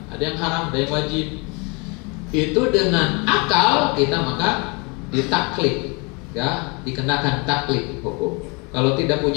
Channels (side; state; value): right; quieter; 30.5 dB